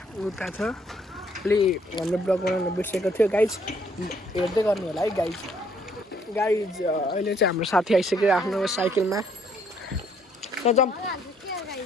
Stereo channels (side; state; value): both; normal; correlation 0.66